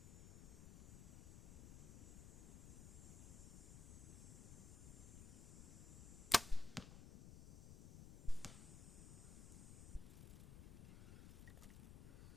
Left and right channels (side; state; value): left; noise; rumble, 11 dB below the sound